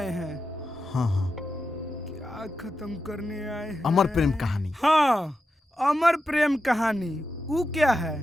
हैं। हाँ हाँ, क्या खत्म करने आए हैं? अमर प्रेम कहानी। हाँ, अमर प्रेम कहानी। वो क्या है?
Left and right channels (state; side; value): normal; both; correlation 0.89